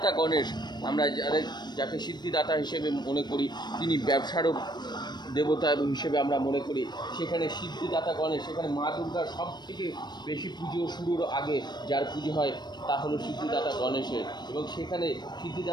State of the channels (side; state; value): right; late; 0.21 ms